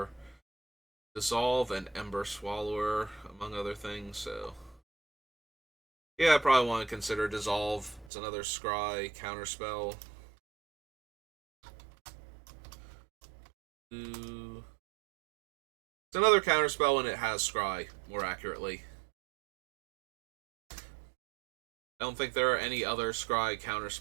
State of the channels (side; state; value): left; drops out; at 8.1 s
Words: Dissolve and Ember Swallower, among other things, so... Yeah, I probably want to consider Dissolve. It's another Scry counterspell. It's another counterspell and it has Scry, more accurately. I don't think there are any other Scry